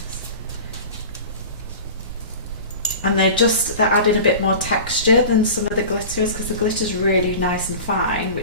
And they're adding a bit more texture than some of the glitters, because the glitter's really nice and fine,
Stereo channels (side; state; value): both; inverted; correlation -0.35